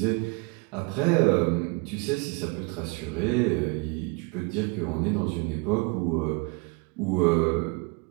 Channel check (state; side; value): quieter; left; 28.5 dB